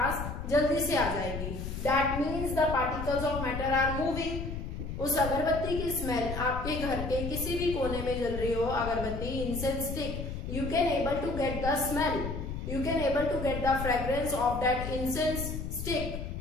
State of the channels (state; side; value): noise; left; rumble, 5 dB below the sound